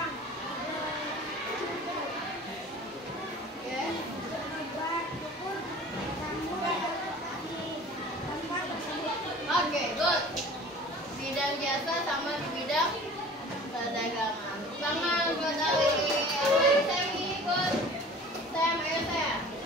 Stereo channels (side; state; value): both; normal; correlation 0.44